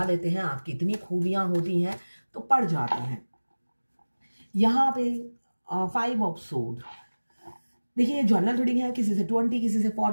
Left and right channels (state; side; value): inverted; both; correlation -1.00